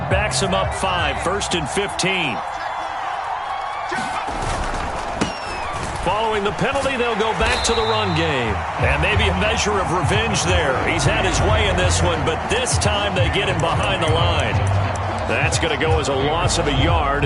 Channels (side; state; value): both; identical; correlation 1.00